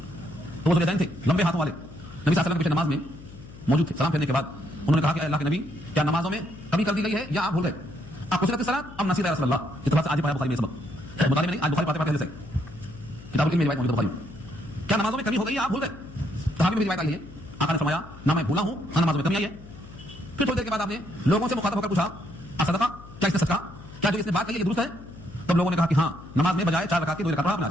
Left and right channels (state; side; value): noise; left; hum, 17 dB below the sound